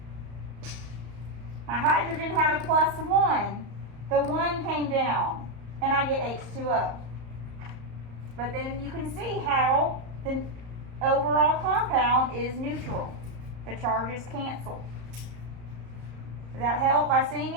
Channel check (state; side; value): late; left; 34 ms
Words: My hydrogen had a +1. The 1 came down. And I get H2O. But then you can see how the overall compound is neutral. The charges cancel. Does that help by seeing